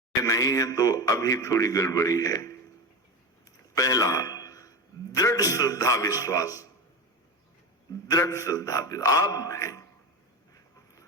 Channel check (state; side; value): normal; both; correlation 0.22